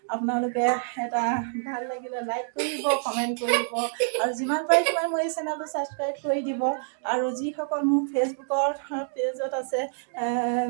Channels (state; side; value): silent; left; digital silence